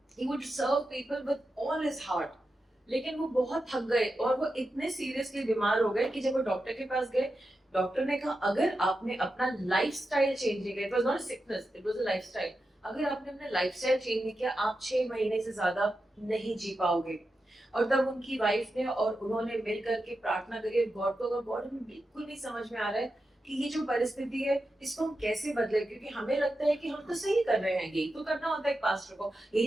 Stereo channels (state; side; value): normal; both; correlation 0.90